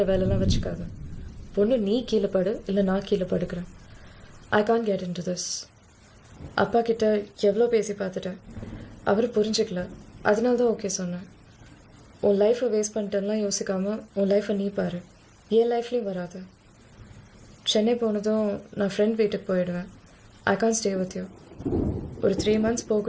வேலைலாம் வச்சுக்காது. பொண்ணு நீ கீழே படு, இல்லை நான் கீழே படுக்கிறேன். I can get in to this. அப்பா கிட்ட எவ்வளோ பேசி பார்த்துட்டேன், அவர் புரிஞ்சுக்கல. அதனால தான் ஓகே சொன்னேன். உன் லைஃப்பை வேஸ்ட் பண்ணிட்டேன்லாம் யோசிக்காமல் உன் லைஃப்பை நீ பாரு. என் லைஃப்லேயும் வராது. சென்னை போனதும் நான் ஃப்ரெண்ட் வீட்டுக்கு போயிடுவேன். ஐ கான் ஸ்டே வித் யூ. ஒரு 3 months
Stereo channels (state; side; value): identical; both; correlation 1.00